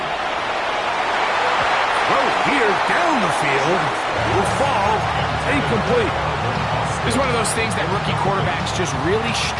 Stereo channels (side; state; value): both; identical; correlation 1.00